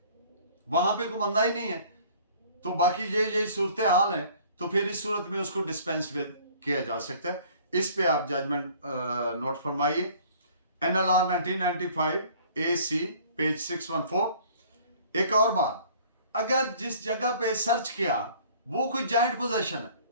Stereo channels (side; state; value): both; inverted; correlation -0.52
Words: वहां पे कोई बंदा ही नहीं है, तो बाकी यही सूरत हाल है, तो फिर इस सूरत में उसको डिस्पेंस विद किया जा सकता है। इस पे आप जजमेंट नोट फरमाइए। NLR 1995 AC page 614। एक और बात, अगर जिस जगह पे सर्च किया वो कोई जॉइंट पोजेशन है